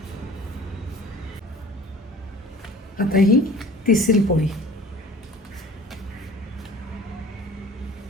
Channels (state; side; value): normal; both; correlation 0.46